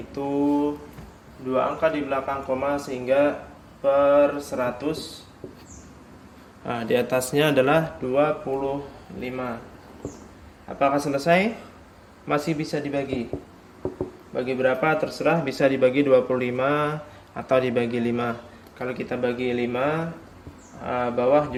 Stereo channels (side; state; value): both; identical; correlation 1.00